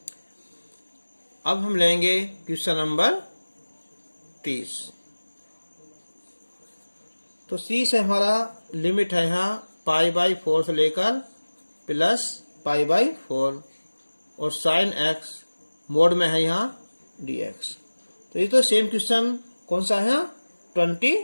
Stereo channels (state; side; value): inverted; both; correlation -1.00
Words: अब हम लेंगे क्वेश्चन नंबर 30 तो सी से हमारा लिमिट है यहाँ π/4 से लेकर प्लस π/4 और साइन x मोड में है यहाँ dx तो ये तो सेम क्वेश्चन कौन सा है